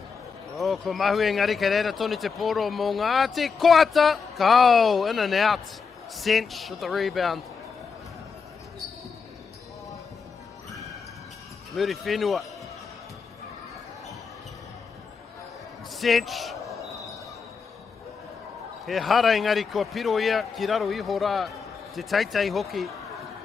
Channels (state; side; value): quieter; right; 5.5 dB